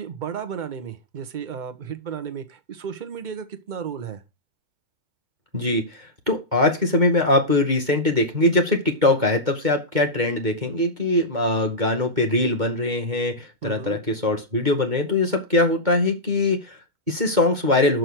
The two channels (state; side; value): late; left; 2.2 ms